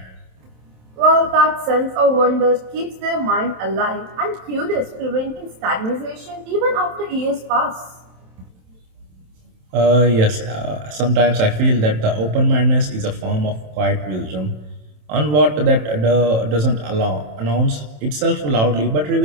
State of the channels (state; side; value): late; left; 27 ms